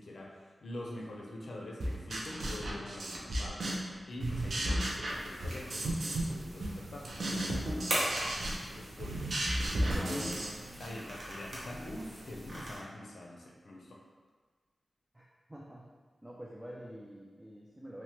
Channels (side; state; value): both; normal; correlation 0.93